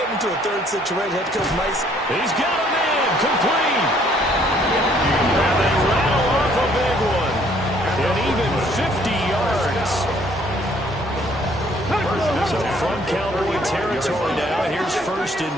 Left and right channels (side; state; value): both; normal; correlation 0.62